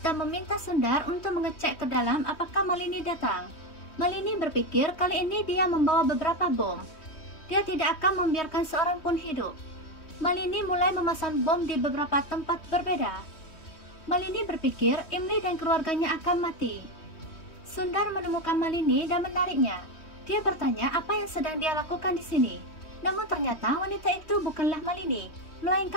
meminta Sundar untuk mengecek ke dalam apakah Malini datang. Malini berpikir kali ini dia membawa beberapa bom. Dia tidak akan membiarkan seorang pun hidup. Malini mulai memasang bom di beberapa tempat berbeda. Malini berpikir Imli dan keluarganya akan mati. Sundar menemukan Malini dan menariknya. Dia bertanya apa yang sedang dia lakukan di sini. Namun ternyata wanita itu bukanlah Malini,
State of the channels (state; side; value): late; right; 3.1 ms